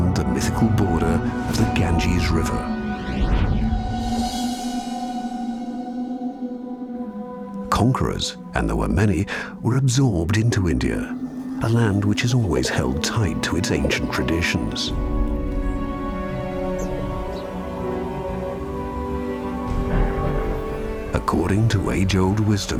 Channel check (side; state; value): both; identical; correlation 1.00